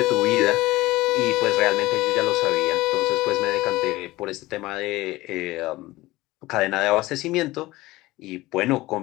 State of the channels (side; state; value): right; quieter; 18.8 dB